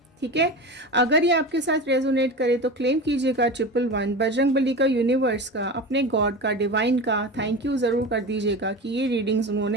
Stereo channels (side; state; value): both; normal; correlation 0.28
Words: ठीक है। अगर ये आपके साथ रेजोनेट करे तो क्लेम कीजिएगा 111, बजरंगबली का, यूनिवर्स का, अपने गॉड का, डिवाइन का थैंक यू ज़रूर कर दीजिएगा कि ये रीडिंग्स